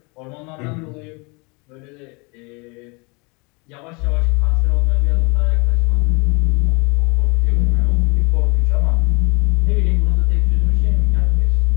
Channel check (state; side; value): quieter; right; 29.4 dB